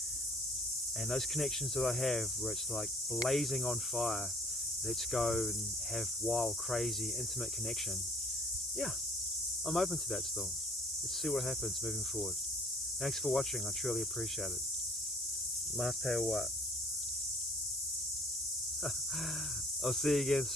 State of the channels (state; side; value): normal; both; correlation 0.54